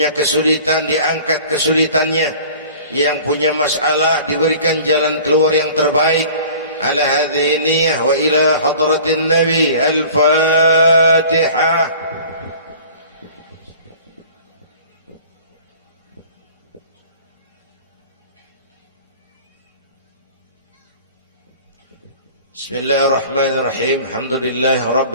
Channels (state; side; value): inverted; both; correlation -0.45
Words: kesulitan diangkat kesulitannya, yang punya masalah diberikan jalan keluar yang terbaik. Ala hadhihi niyyah wa ila hadratin nabi. Al-Fatihah. Bismillahirrahmanirrahim. Alhamdulillahi